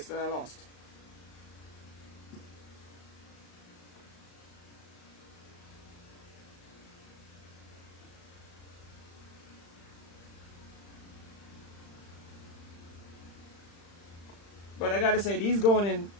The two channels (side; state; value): right; late; 35 ms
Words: that I lost. But I gotta say, these